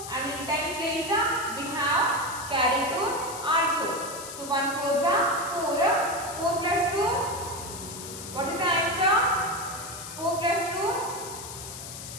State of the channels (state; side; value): noise; left; hiss, 10 dB below the sound